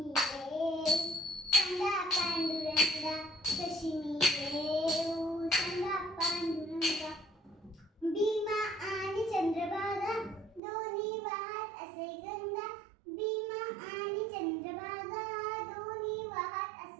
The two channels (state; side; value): drops out; left; at 10.6 s